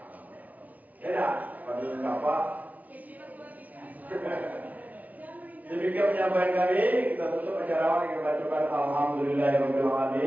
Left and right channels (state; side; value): late; left; 0.073 ms